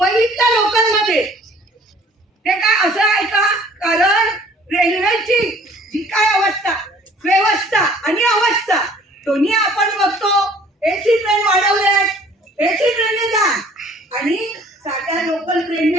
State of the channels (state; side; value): normal; both; correlation 0.54